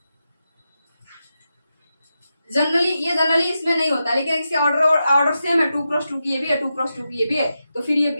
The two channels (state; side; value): inverted; both; correlation -0.89